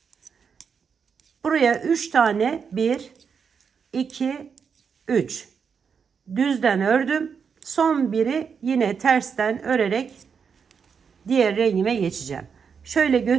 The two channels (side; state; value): left; quieter; 6.4 dB